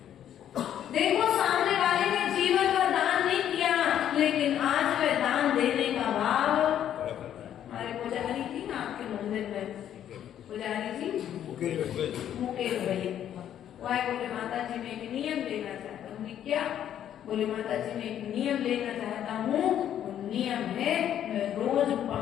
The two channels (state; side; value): quieter; right; 10.4 dB